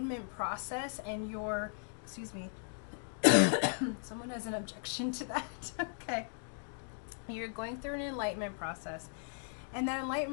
process, and your, excuse me, someone has an objection to that. Okay, you're going through an enlightenment process, and that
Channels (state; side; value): silent; right; 53 dB below the other